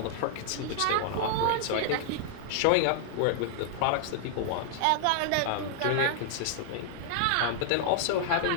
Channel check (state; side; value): different; both; correlation 0.00